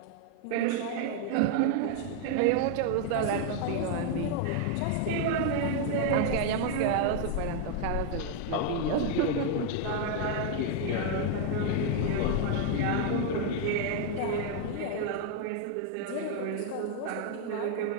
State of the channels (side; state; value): both; different; correlation 0.00